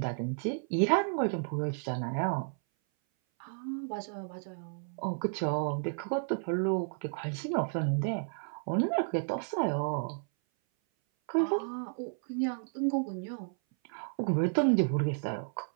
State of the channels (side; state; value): left; silent; 56 dB below the other